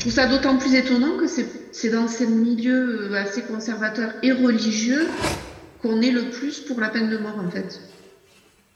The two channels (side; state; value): both; identical; correlation 1.00